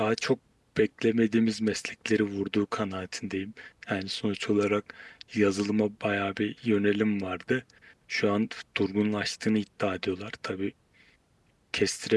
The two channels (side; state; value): both; identical; correlation 1.00